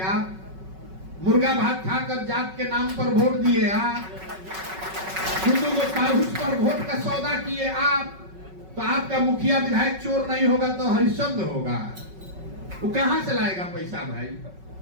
मुर्गा भात खाकर जात के नाम पर वोट दिए आप, हिंदू को पाहुस पर वोट का सौदा किए आप। तो आपका मुखिया विधायक चोर नहीं होगा तो हरिश्चंद्र होगा। वो कहां से लाएगा पैसा भाई?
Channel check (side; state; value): left; late; 5.3 ms